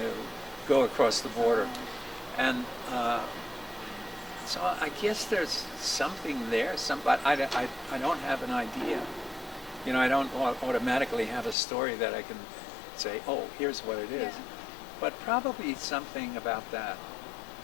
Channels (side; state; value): right; drops out; at 11.6 s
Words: go across the border. And so I guess there's something there. But I don't have an idea. You know, I don't automatically have a story that I can say, oh, here's what it is. Yeah. But probably something about that.